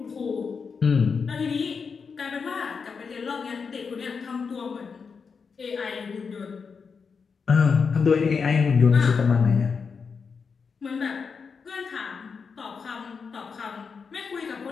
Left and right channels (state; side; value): quieter; right; 5.6 dB